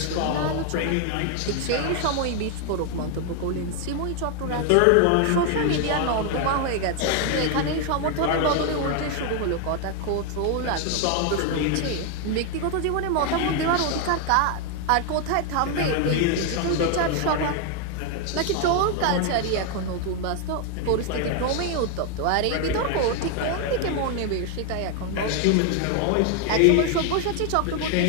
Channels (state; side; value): different; both; correlation 0.01